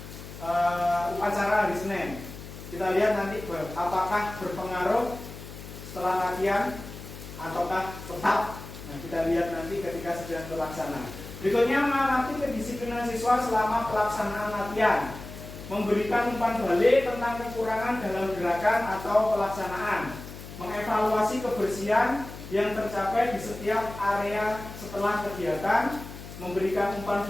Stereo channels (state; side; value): noise; left; hum, 13 dB below the sound